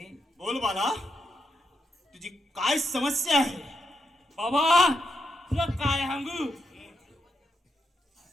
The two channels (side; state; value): both; normal; correlation 0.83